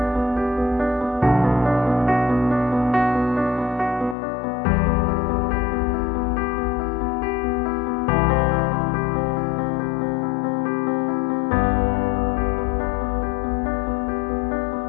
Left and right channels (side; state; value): right; drops out; at 4.2 s